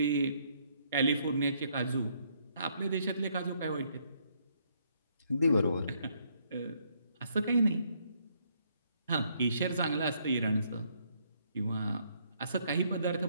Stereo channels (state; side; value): inverted; both; correlation -0.70